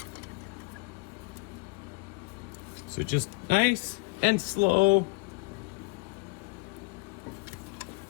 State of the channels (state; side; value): quieter; right; 27.1 dB